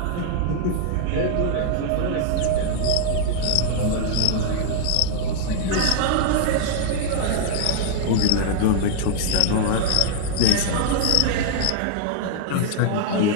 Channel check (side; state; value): both; different; correlation -0.01